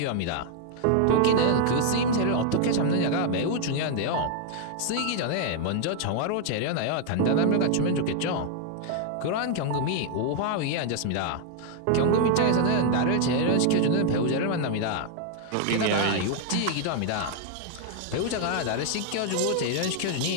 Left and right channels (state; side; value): different; both; correlation 0.00